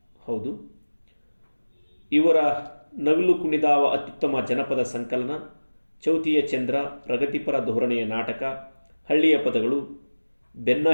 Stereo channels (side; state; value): both; inverted; correlation -1.00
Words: ಹೌದು. ಇವರ ನವಿಲು ಕುಣಿದಾವ ಅತ್ಯುತ್ತಮ ಜನಪದ ಸಂಕಲನ, ಚೌತಿಯ ಚಂದ್ರ, ಪ್ರಗತಿಪರ ಧೋರಣೆಯ ನಾಟಕ, ಹಳ್ಳಿಯ ಪದಗಳು, ಬೆನ್ನ